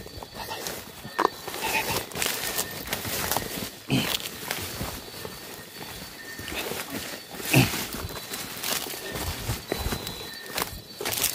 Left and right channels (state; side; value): identical; both; correlation 1.00